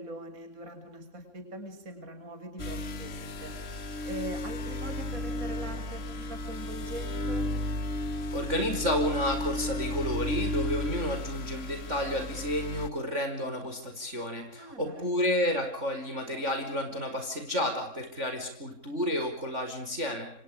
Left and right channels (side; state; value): left; late; 3.6 ms